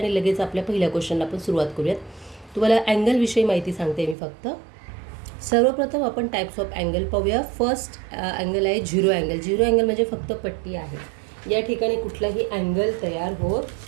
लगेच आपल्या पहिल्या क्वेश्चनला आपण सुरुवात करूयात. तुम्हाला अँगलविषयी माहिती सांगते मी फक्त. सर्वप्रथम आपण टाईप्स ऑफ अँगल पाहूया. फर्स्ट अँगल आहे झिरो अँगल. झिरो अँगल म्हणजे फक्त पट्टी आहे. या ठिकाणी कुठलाही अँगल तयार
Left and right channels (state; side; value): drops out; left; at 4.2 s